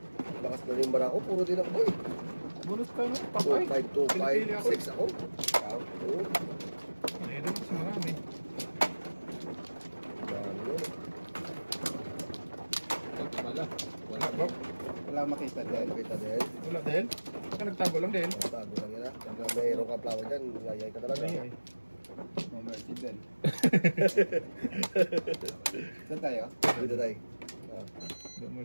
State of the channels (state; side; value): inverted; both; correlation -1.00